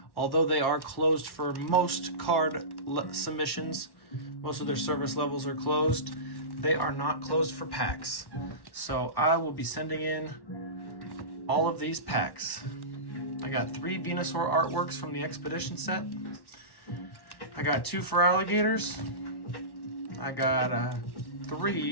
although they are closed for most card submissions, most of their service levels are closed, they are not closed for packs. So I will be sending in all of these packs. I got 3 Venusaur artworks from the Expedition set. I got 2 for alligators. I got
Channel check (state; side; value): late; right; 1.1 ms